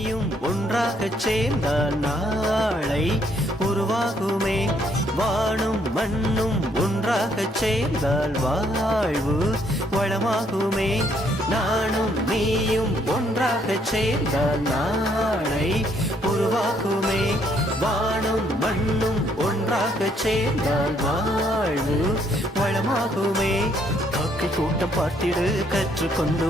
ஒன்றாகச் சேர்ந்தால் நாளை உருவாகுமே. வானும் மண்ணும் ஒன்றாகச் சேர்ந்தால் வாழ்வு வளமாகுமே. நானும் நீயும் ஒன்றாகச் சேர்ந்தால் நாளை உருவாகுமே. வானும் மண்ணும் ஒன்றாகச் சேர்ந்தால் வாழ்வு வளமாகுமே. காக்கை கூட்டம் பார்த்திடு, கற்றுக்கொண்டு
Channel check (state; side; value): normal; both; correlation 0.69